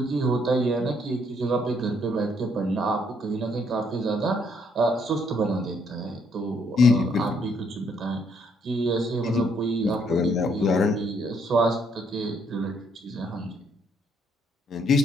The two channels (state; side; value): normal; both; correlation 0.70